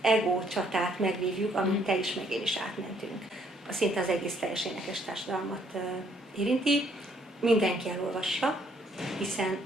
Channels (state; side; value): normal; both; correlation 0.67